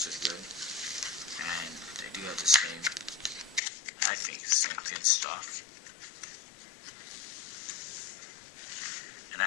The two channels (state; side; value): drops out; right; at 3.6 s